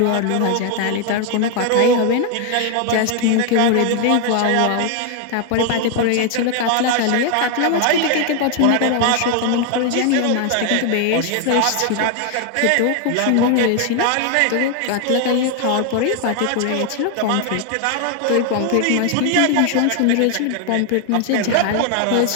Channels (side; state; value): both; different; correlation 0.00